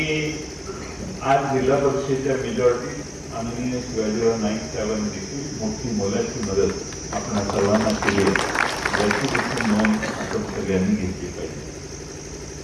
आज जिल्हा परिषदेच्या मेजॉरिटी माननीय शिवाजीराव नाईक साहेबांनी देखील मोठी मोलाची मदत आपण सर्वांना केली याची देखील नोंद आपण सगळ्यांनी घेतली पाहिजे.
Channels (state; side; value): identical; both; correlation 1.00